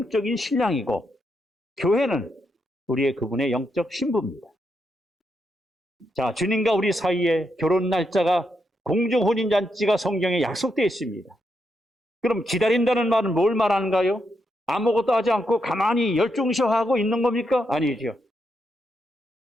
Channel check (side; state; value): both; normal; correlation 0.82